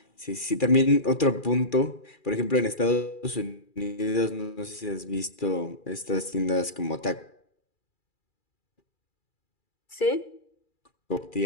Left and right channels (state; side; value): late; right; 2.4 ms